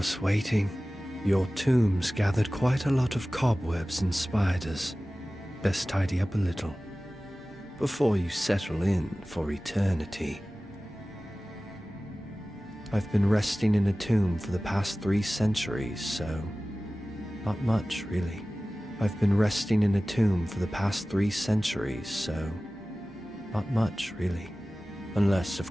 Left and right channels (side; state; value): both; normal; correlation 0.97